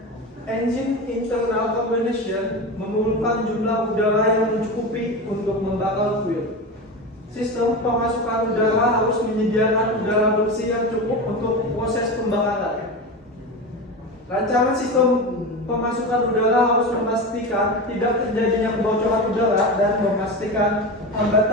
Engine internal combustion memerlukan jumlah udara yang mencukupi untuk membakar fuel. Sistem pemasukan udara harus menyediakan udara bersih yang cukup untuk proses pembakaran. Rancangan sistem pemasukan udara harus memastikan tidak terjadinya kebocoran udara dan memastikan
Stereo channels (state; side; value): normal; both; correlation 0.24